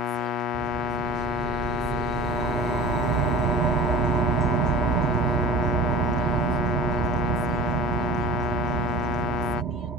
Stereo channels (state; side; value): normal; both; correlation 0.39